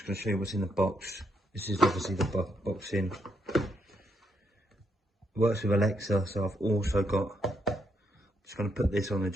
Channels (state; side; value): normal; both; correlation 0.77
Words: going to show you what's in the box. This is obviously the box in. Works with Alexa, so I've also got, just going to put this on the